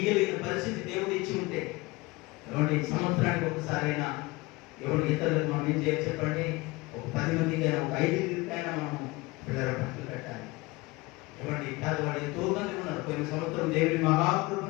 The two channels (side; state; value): right; quieter; 22.5 dB